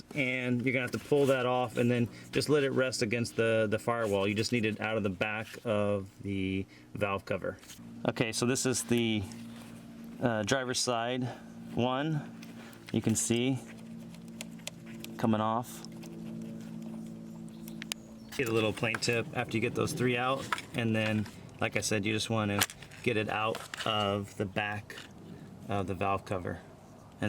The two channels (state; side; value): identical; both; correlation 1.00